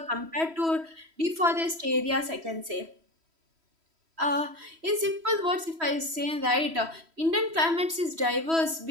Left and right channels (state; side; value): late; left; 3.1 ms